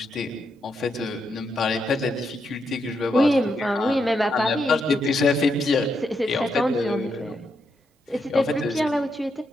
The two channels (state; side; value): normal; both; correlation 0.81